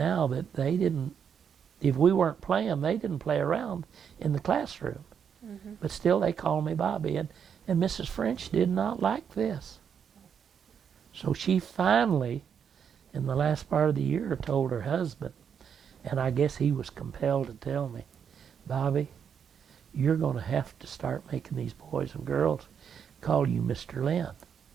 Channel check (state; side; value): quieter; left; 7.5 dB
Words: that they didn't, if we weren't playing, they didn't play around in the classroom. But still they call me Bobby. And Mrs. French did not like this. So she finally, in the last part of the year, told her husband, and I guess he was compelled to tell me, Bobby, you're going to have to start making these boys and girls call you Mr. Linn.